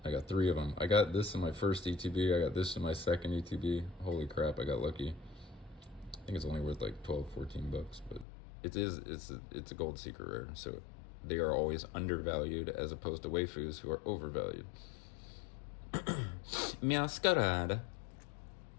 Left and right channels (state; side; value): drops out; right; at 8.2 s